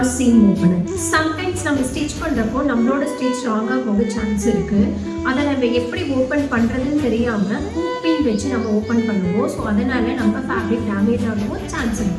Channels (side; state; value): both; identical; correlation 1.00